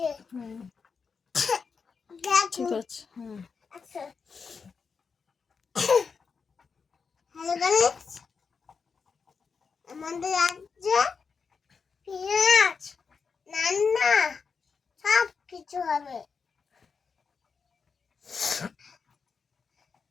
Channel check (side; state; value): right; quieter; 5.5 dB